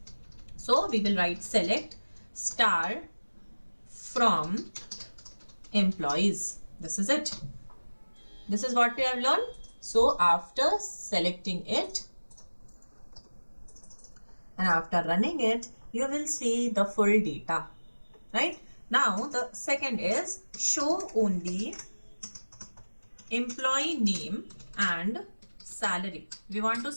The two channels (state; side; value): inverted; both; correlation -1.00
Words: So we will write select star from employees. This is it. This is what we have learned. So after selecting it and after running it, you will see the full data, right? Now the second is show only employee name and salary. We want to